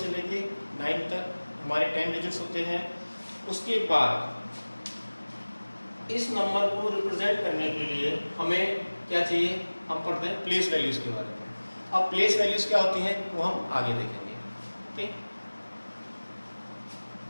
से लेके 9 तक हमारे 10 डिजिट्स होते हैं. उसके बाद इस नंबर को रिप्रेजेंट करने के लिए हमें क्या चाहिए, हम पढ़ते हैं प्लेस वैल्यूज के बारे में. अब प्लेस वैल्यूज क्या होती हैं वो हम आगे देखेंगे. ओके,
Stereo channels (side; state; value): both; inverted; correlation -1.00